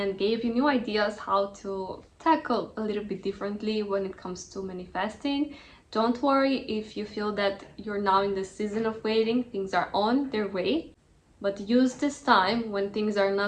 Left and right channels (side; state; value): both; identical; correlation 1.00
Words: gave you new ideas how to tackle a little bit differently when it comes to manifesting. Don't worry if you feel that you're now in the season of waiting, things are on their way. But use this time when things are